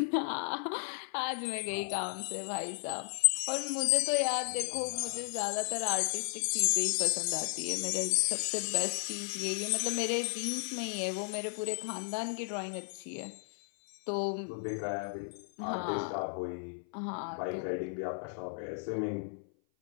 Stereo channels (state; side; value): silent; right; 55 dB below the other